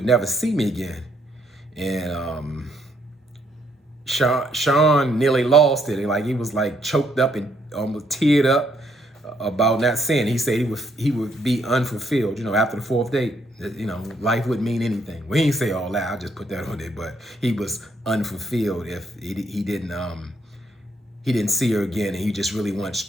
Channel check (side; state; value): both; normal; correlation 0.72